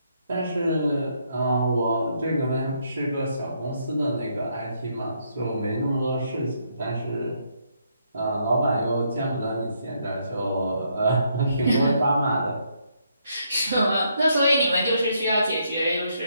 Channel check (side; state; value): both; inverted; correlation -0.74